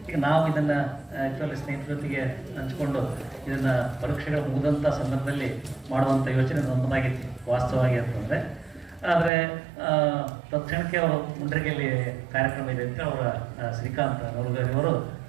ಈಗ ನಾವು ಇದನ್ನು ಆ್ಯಕ್ಚುಲಿ ಸ್ನೇಹಿತರ ಜೊತೆಗೆ ಹಂಚ್ಕೊಂಡು ಇದನ್ನು ಪರೀಕ್ಷೆಗಳು ಮುಗಿದಂಥ ಸಂದರ್ಭದಲ್ಲಿ ಮಾಡುವಂಥ ಯೋಚನೆ ನನ್ನದಾಗಿತ್ತು ವಾಸ್ತವವಾಗಿ ಅಂತಂದರೆ. ಆದರೆ ತಕ್ಷಣಕ್ಕೆ ಅವರು ಮುಂಡ್ರಿಗೆಯಲ್ಲಿ ಕಾರ್ಯಕ್ರಮ ಇದೆ ಅಂತ ಅವರ ಶ್ರೀಕಾಂತ್ ನವಲ್ಗರಿ ಅವರು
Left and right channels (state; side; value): drops out; left; at 9.3 s